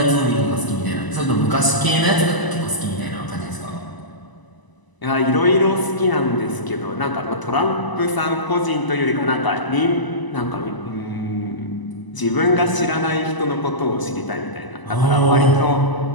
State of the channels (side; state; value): right; late; 1.0 ms